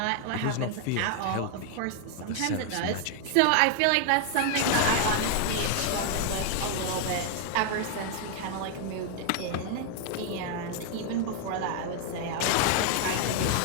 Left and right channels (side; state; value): both; different; correlation 0.00